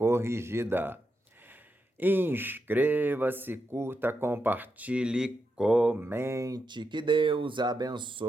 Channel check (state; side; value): normal; both; correlation 0.85